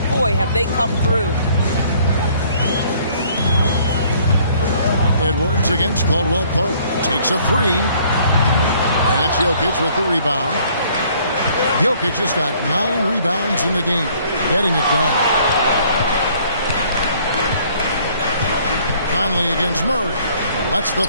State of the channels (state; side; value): inverted; both; correlation -0.59